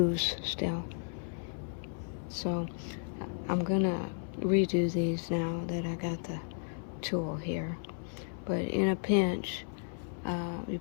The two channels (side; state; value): right; silent; 55 dB below the other